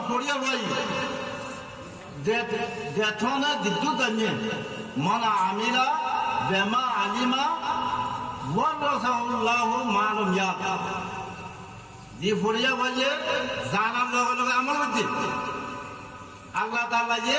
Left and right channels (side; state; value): both; identical; correlation 1.00